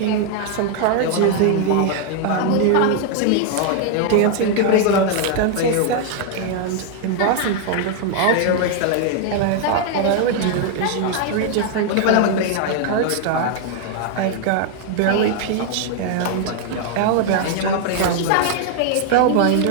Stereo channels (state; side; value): different; both; correlation 0.00